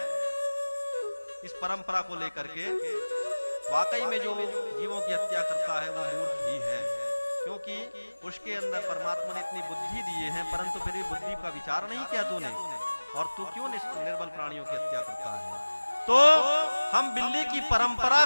इस परंपरा को लेकर के। वाकई में जो जीवों की हत्या करता है वो मूर्ख ही है, क्योंकि उसके अंदर परमात्मा ने इतनी बुद्धि दिए हैं, परंतु फिर भी बुद्धि का विचार नहीं किया तूने, और तू क्यों निर्बल प्राणियों की हत्या करता है। तो हम बिल्ली की परंपरा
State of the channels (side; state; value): both; inverted; correlation -1.00